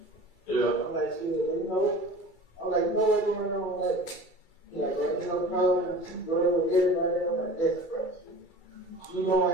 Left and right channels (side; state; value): right; late; 2.3 ms